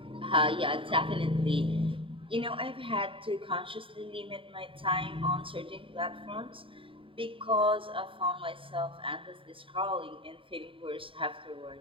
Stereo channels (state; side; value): late; left; 0.25 ms